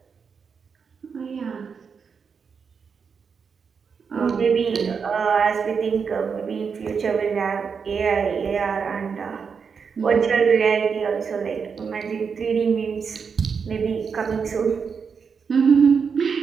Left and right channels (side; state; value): left; quieter; 6.0 dB